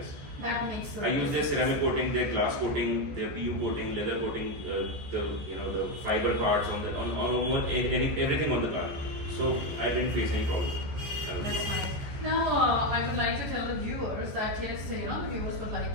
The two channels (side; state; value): left; late; 14 ms